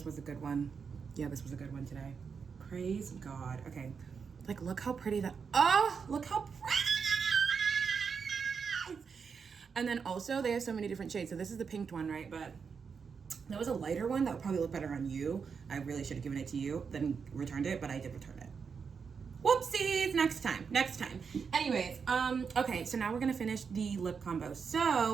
was a good one. Yeah, this was a good one today. Praise God. Okay, like look how pretty that, oh, look how pretty. And then also they have so many different shades. So this is the pink one, right? But there was a lighter one that would probably look better on you. I really should have given it to you, then returned it, but I did return it. Whoopsies, next time. Anyways, okay, so now we're gonna finish the lip combo.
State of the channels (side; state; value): left; quieter; 5.9 dB